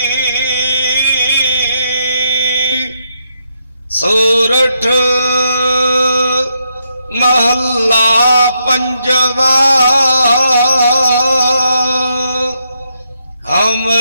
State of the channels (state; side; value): inverted; both; correlation -0.79